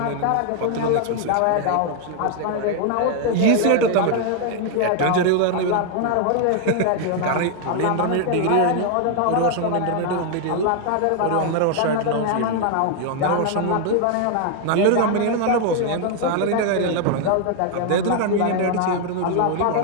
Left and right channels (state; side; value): different; both; correlation 0.00